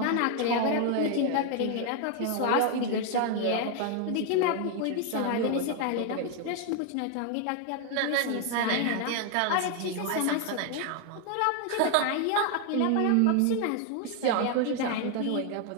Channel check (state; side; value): different; both; correlation 0.01